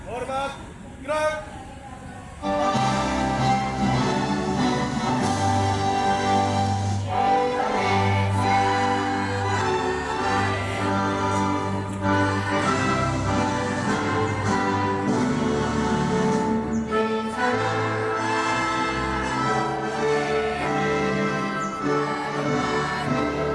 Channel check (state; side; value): identical; both; correlation 1.00